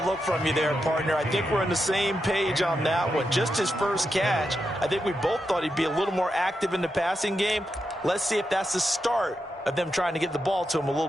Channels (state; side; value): normal; both; correlation 0.86